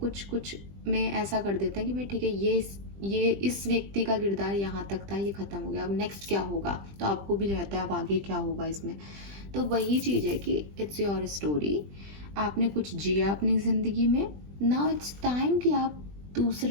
में ऐसा कर देते हैं कि भाई ठीक है, ये इस व्यक्ति का किरदार यहाँ तक था, ये ख़त्म हो गया, अब नेक्स्ट क्या होगा, तो आपको भी रहता है अब आगे क्या होगा इसमें। तो वही चीज़ है कि इट्स योर स्टोरी, आपने कुछ जिया अपनी ज़िंदगी में, नाउ इट्स टाइम कि आप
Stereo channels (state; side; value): late; left; 20 ms